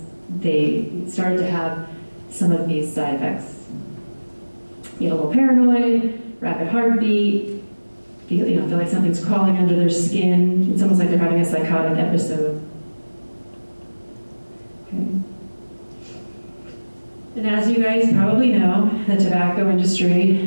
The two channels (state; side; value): inverted; both; correlation -1.00